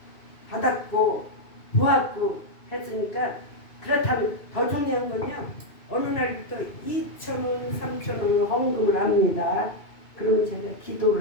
받았고 보았고 했으니까 그렇다면 더 중요한 건요. 어느 날부터 2,000원, 3,000원 헌금을 합니다. 그러면 제가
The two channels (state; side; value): late; right; 2.6 ms